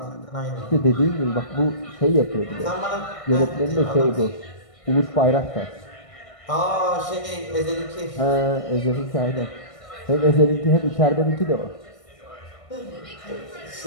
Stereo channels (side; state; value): right; late; 1.6 ms